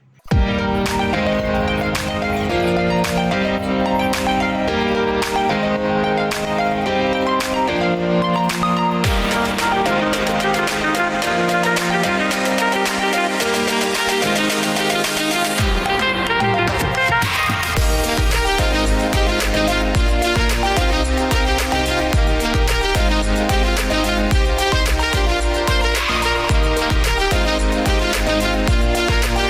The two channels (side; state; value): both; identical; correlation 1.00